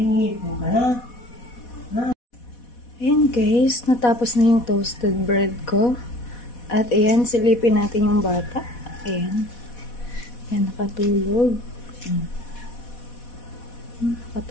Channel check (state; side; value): late; right; 4.1 ms